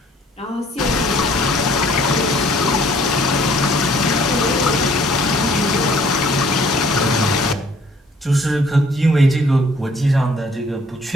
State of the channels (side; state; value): both; normal; correlation 0.59